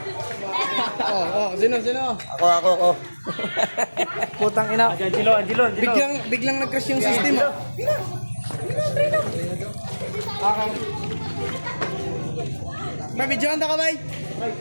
Ako. Putang ina. Angelo. Biglang nag-crash yung system oh. May video ka bay?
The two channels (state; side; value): inverted; both; correlation -1.00